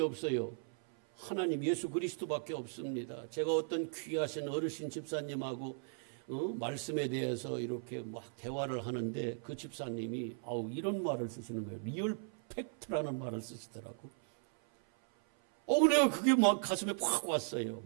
하나님 예수 그리스도밖에 없습니다. 제가 어떤 귀하신 어르신 집사님하고 말씀에 대해서 이렇게 막 대화를 하는데 그 집사님이 이런 말을 쓰시는 거예요. 리얼 팩트라는 말을 쓰시더라고. 내가 그게 막 가슴에 팍 왔어요.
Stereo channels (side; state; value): left; silent; 53 dB below the other